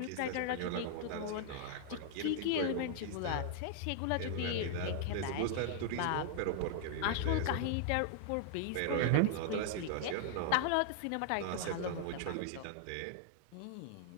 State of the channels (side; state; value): both; different; correlation -0.01